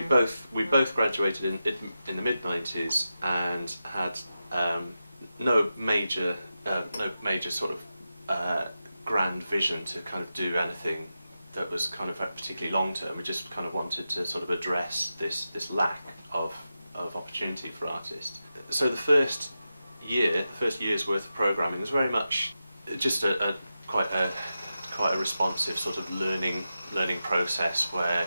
both graduated in the mid-90s and had no major sort of grand vision to kind of do anything that was kind of particularly long term. We just kind of wanted to sort of address this lack of opportunity for artists. So the first year's worth of programming was very much just quite a responsive sort of learning process where,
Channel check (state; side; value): inverted; both; correlation -0.91